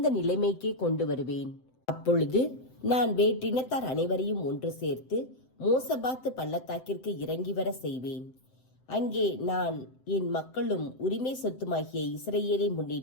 நிலைமைக்கே கொண்டு வருவேன். அப்பொழுது நான் வேற்றினத்தார் அனைவரையும் ஒன்று சேர்த்து மோசபாத்து பள்ளத்தாக்கிற்கு இறங்கி வர செய்வேன். அங்கே நான் என் மக்களும் உரிமை சொத்துமாகிய இஸ்ரவேலை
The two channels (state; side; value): late; right; 7.8 ms